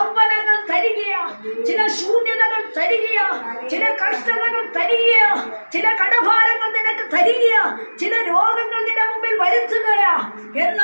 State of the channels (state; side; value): inverted; both; correlation -1.00